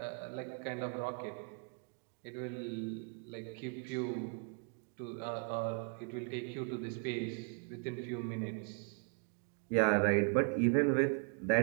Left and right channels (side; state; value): left; quieter; 39.6 dB